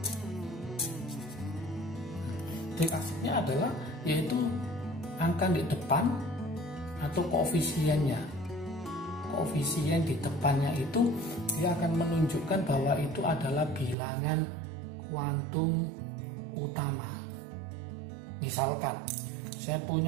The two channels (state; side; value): drops out; left; at 14.0 s